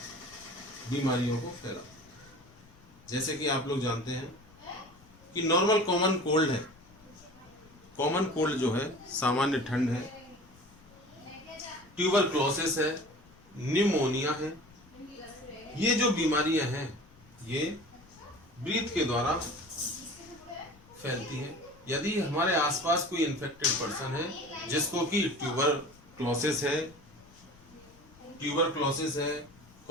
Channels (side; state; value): left; noise; rumble, 25 dB below the sound